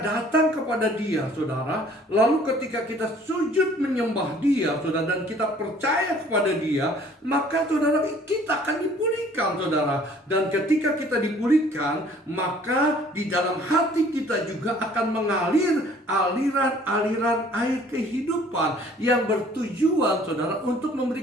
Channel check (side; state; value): both; normal; correlation 0.55